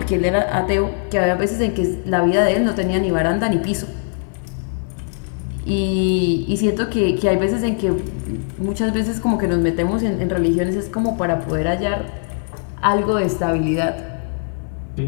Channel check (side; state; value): right; silent; 66 dB below the other